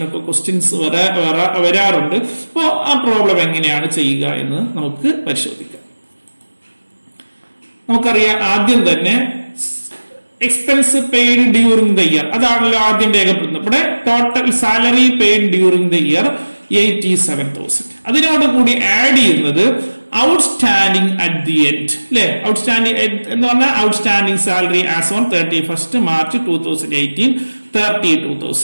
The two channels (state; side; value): inverted; both; correlation -1.00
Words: ക്വസ്റ്റ്യൻസ് വരാറുണ്ട്. അപ്പോൾ ആ പ്രോബ്ലം എങ്ങനെയാണ് ചെയ്യുക എന്ന് നമുക്ക് പരിശോധിക്കാം. നമുക്കറിയാം, ആദ്യം തന്നെ expense paid during the year, അതാണല്ലോ ആദ്യം രേഖപ്പെടുത്തുന്നത്. ഇവിടെ total salary paid during the year 87,000. അതിനോട് കൂടി ആഡ് ചെയ്യുന്നത് ഔട്ട്സ്റ്റാൻഡിംഗ് അറ്റ് ദി എൻഡ്, അല്ലെ? ഔട്ട്സ്റ്റാൻഡിംഗ് എന്ന് പറഞ്ഞാൽ outstanding salary as on 31st March 2018